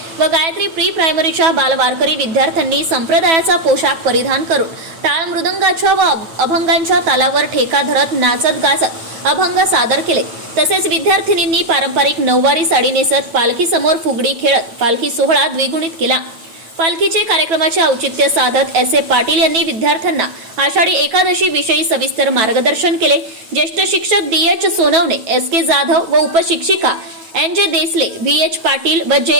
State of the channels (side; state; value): left; late; 9.2 ms